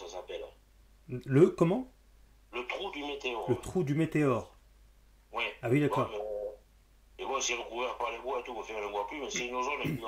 s'appelle. Le comment? Le trou du météore. Le trou du météore. Oui. Ah oui, d'accord. Et bon, c'est recouvert par les bois et tout, on ne voit plus, mais c'est une zone qui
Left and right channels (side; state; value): both; identical; correlation 1.00